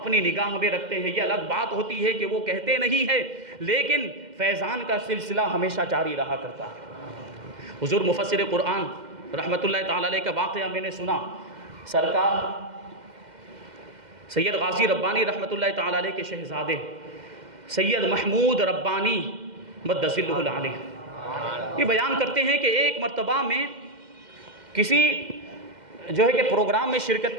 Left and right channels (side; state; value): left; late; 2.1 ms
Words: نگاہ میں رکھتے ہیں۔ یہ الگ بات ہوتی ہے کہ وہ کہتے نہیں ہے، لیکن فیضان کا سلسلہ ہمیشہ جاری رہا کرتا ہے۔ حضور مفسر قرآن رحمۃ اللہ تعالیٰ علیہ کا واقعہ میں نے سنا، سرکار سید غازی ربانی رحمۃ اللہ تعالیٰ علیہ کے شہزادے سید محمود ربانی مدظ اللہ العالیہ یہ بیان کرتے ہیں کہ ایک مرتبہ میں کسی جو ہے کہ پروگرام میں شرکت